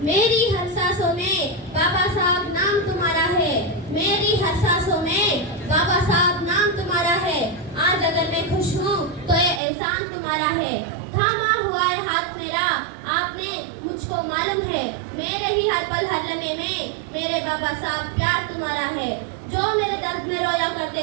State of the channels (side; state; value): left; drops out; at 9.6 s